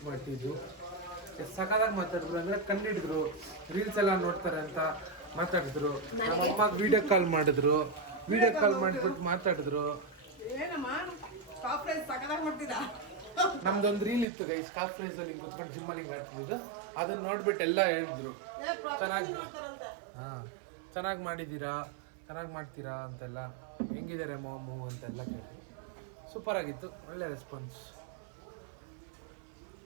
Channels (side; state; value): left; drops out; at 14.2 s